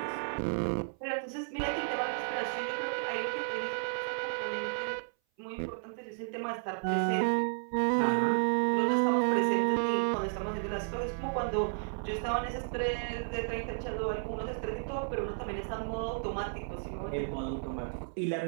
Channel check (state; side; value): silent; left; 56 dB below the other